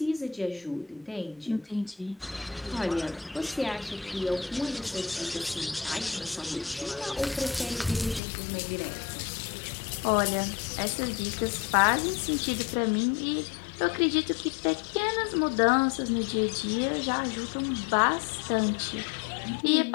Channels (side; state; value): right; drops out; at 8.2 s